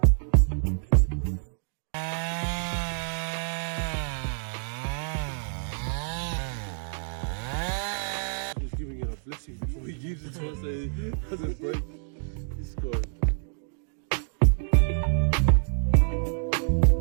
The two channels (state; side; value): silent; left; digital silence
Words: He's giving it a blessing before he gives it to us. It doesn't break. He's scored.